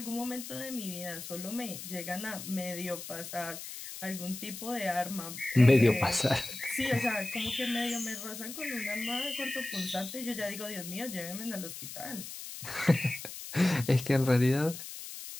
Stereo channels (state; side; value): noise; left; hiss, 10 dB below the sound